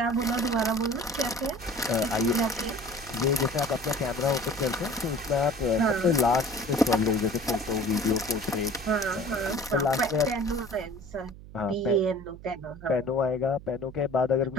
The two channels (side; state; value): right; noise; hum, 17 dB below the sound